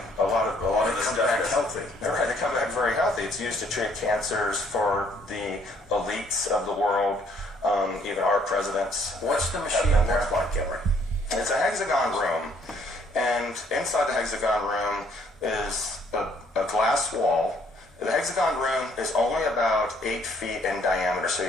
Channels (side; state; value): both; normal; correlation 0.64